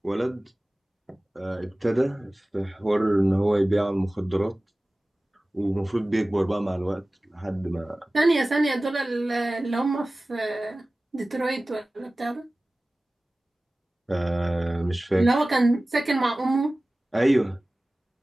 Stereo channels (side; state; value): both; normal; correlation 0.97